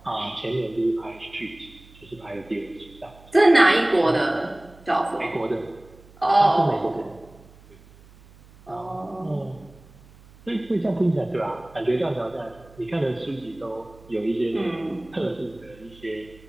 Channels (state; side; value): noise; right; hum, 24 dB below the sound